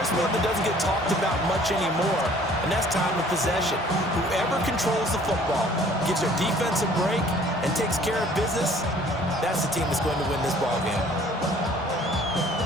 one that doesn't get talked about much anymore, and that's time of possession. Whoever controls the football, gives their defense a break, and takes care of business, that's the team that's going to win this ball game.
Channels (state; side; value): normal; both; correlation 0.55